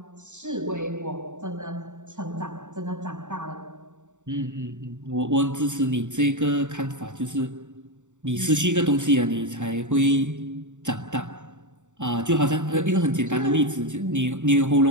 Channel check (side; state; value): left; late; 0.85 ms